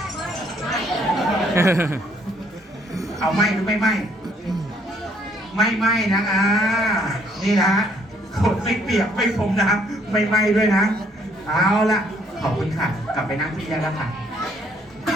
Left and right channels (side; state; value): both; normal; correlation 0.66